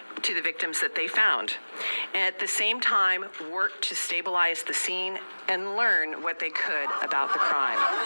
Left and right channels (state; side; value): inverted; both; correlation -1.00